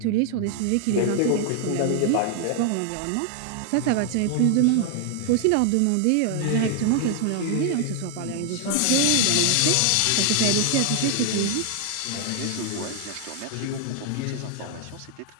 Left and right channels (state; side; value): different; both; correlation 0.00